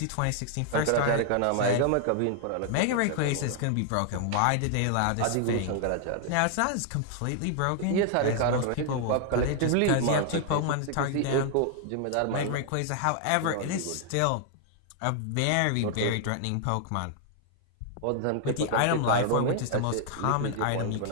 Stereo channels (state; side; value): different; both; correlation 0.00